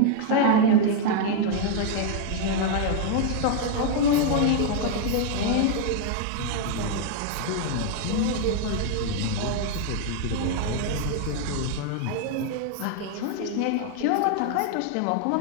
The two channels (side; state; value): both; different; correlation 0.00